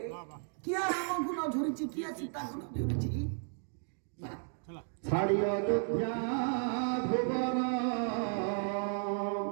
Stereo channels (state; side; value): silent; left; 55 dB below the other